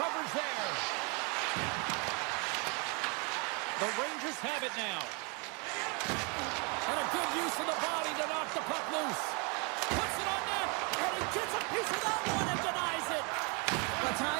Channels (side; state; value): left; quieter; 33.0 dB